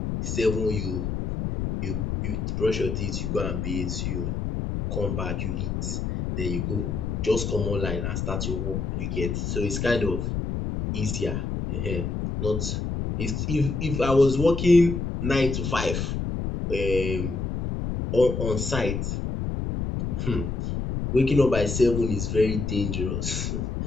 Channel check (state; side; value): noise; left; rumble, 2 dB below the sound